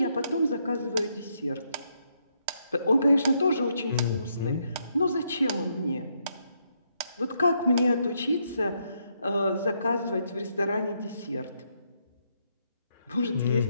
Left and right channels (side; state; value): both; inverted; correlation -0.76